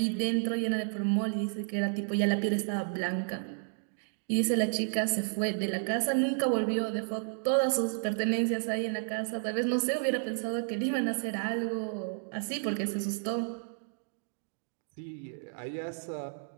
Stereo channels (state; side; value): silent; left; digital silence